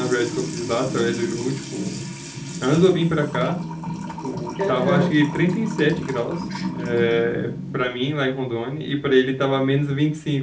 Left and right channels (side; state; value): both; identical; correlation 1.00